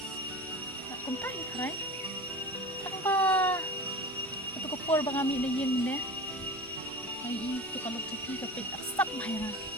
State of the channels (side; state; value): both; normal; correlation 0.33